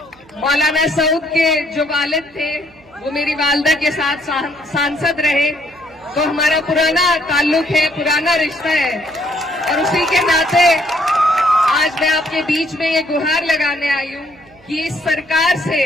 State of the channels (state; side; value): noise; right; hum, 28 dB below the sound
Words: मौलाना सऊद के जो वालिद थे वो मेरी वालदा के साथ सांसद रहे, तो हमारा पुराना ताल्लुक है, पुराना रिश्ता है और उसी के नाते आज मैं आपके बीच में ये गुहार लगाने आई हूँ कि इस सरकार से,